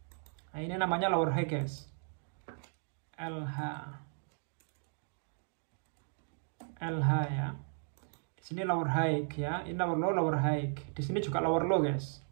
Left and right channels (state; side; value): silent; left; 54 dB below the other